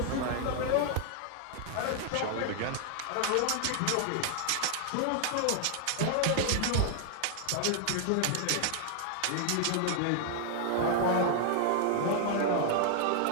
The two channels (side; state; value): both; different; correlation 0.00